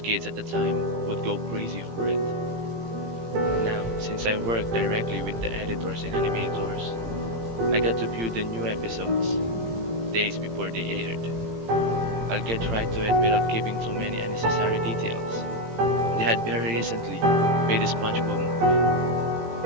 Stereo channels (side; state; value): left; late; 18 ms